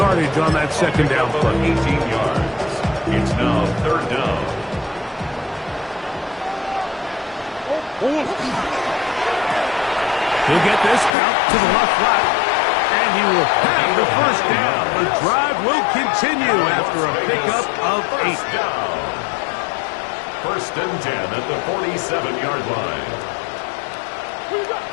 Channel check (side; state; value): right; drops out; at 11.1 s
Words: on that 2nd down play. 18 yards. It's now 3rd down. He'll get this out to the left flat, and he will have the 1st down. The drive will continue after a pickup of 8. 1st and 10 at the 47-yard line. Who you